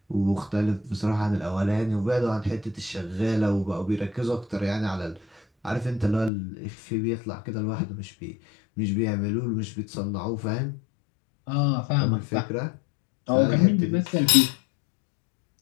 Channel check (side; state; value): right; drops out; at 6.3 s